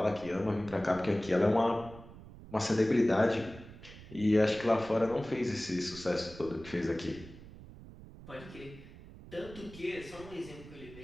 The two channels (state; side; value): noise; right; rumble, 17 dB below the sound